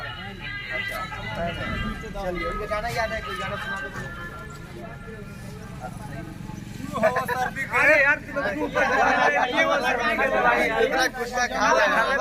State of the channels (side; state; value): both; identical; correlation 1.00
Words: चलिए, उनका गाना याद है? कोई गाना सुना दो। अरे यार कुछ खा